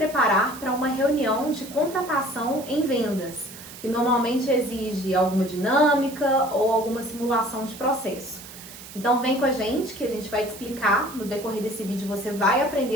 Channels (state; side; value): noise; right; hiss, 15 dB below the sound